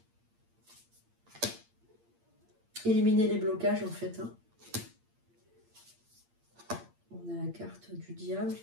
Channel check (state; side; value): late; left; 8.7 ms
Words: Éliminer les blocages, en fait. Hein. On a la carte du diable